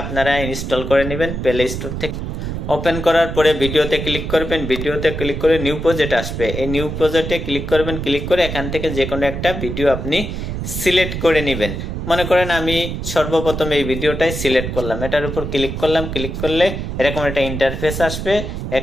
আপনারা ইনস্টল করে নেবেন প্লে স্টোর থেকে। ওপেন করার পরে ভিডিওতে ক্লিক করবেন, ভিডিওতে ক্লিক করে নিউ প্রজেক্ট আসবে, এই নিউ প্রজেক্টে ক্লিক করবেন। ক্লিক করে এখান থেকে যে কোনো একটা ভিডিও আপনি সিলেক্ট করে নেবেন। মনে করেন আমি সর্বপ্রথম এই ভিডিওটাই সিলেক্ট করলাম, এটার উপর ক্লিক করলাম। ক্লিক করলে এরকম একটা ইন্টারফেস আসবে।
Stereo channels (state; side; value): noise; right; rumble, 5 dB below the sound